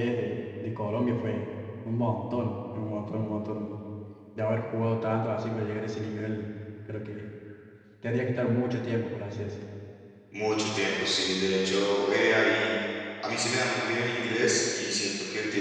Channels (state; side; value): identical; both; correlation 1.00